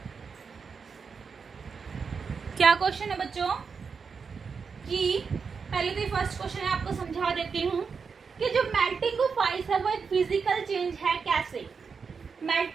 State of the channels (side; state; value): left; quieter; 5.6 dB